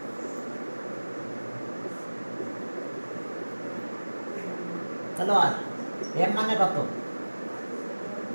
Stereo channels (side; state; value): both; inverted; correlation -1.00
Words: hello আর m মানে কত